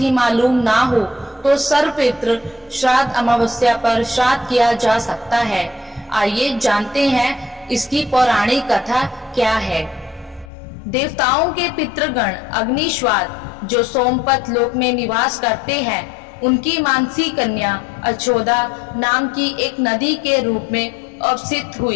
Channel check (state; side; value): drops out; right; at 10.5 s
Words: मालूम ना हो तो सर्व पितृ श्राद्ध अमावस्या पर श्राद्ध किया जा सकता है। आइए जानते हैं इसकी पौराणिक कथा क्या है। देवताओं के पितृगण अग्निश्वाद जो सोमपत लोक में निवास करते हैं, उनकी मानसी कन्या अछोदा नाम की एक नदी के रूप में अवसित